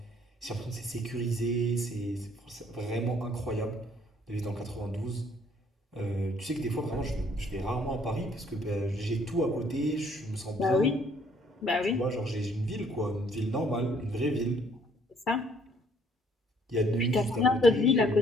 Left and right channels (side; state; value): both; normal; correlation 0.63